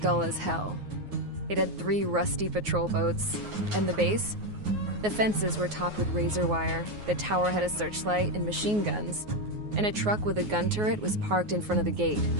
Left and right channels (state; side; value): late; left; 9.5 ms